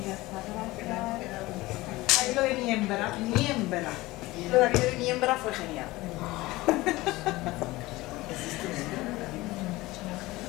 Ahí lo de miembra. Lo de aquello de miembra fue genial.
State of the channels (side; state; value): right; quieter; 19.6 dB